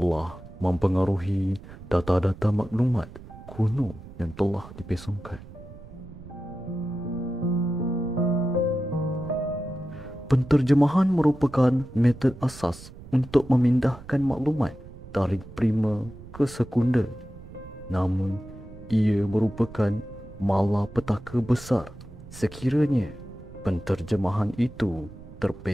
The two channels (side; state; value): right; noise; rumble, 17 dB below the sound